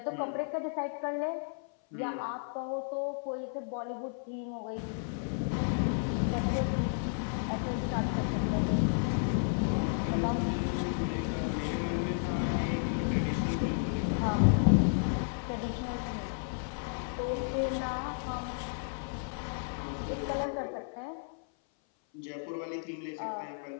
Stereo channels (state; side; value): silent; right; 56 dB below the other